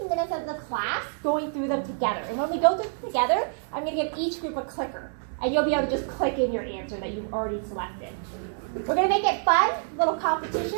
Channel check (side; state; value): left; silent; 60 dB below the other